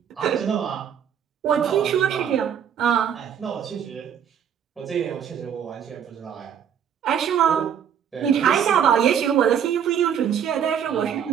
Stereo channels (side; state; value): left; quieter; 8.5 dB